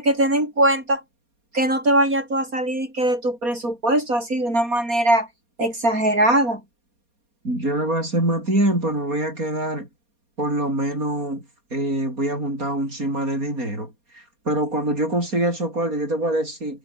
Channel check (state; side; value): late; left; 4.2 ms